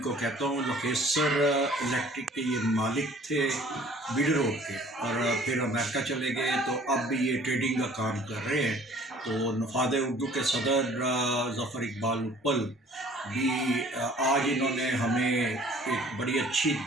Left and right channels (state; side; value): normal; both; correlation 0.53